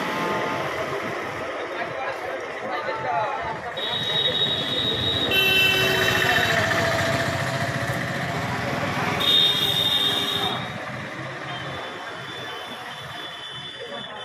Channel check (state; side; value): identical; both; correlation 1.00